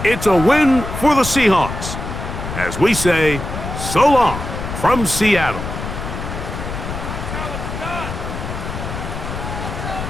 It's a win for the Seahawks. As we say, so long from Seattle.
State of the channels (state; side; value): noise; left; rumble, 6 dB below the sound